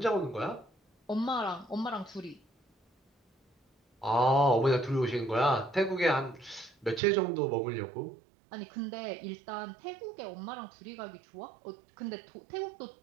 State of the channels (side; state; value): left; drops out; at 7.0 s